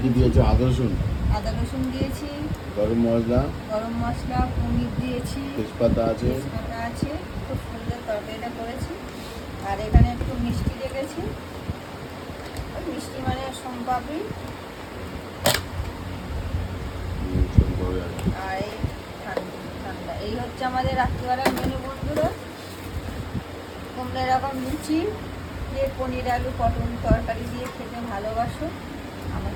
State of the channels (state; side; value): identical; both; correlation 1.00